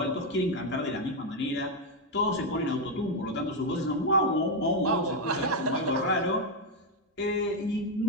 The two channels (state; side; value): normal; both; correlation 0.03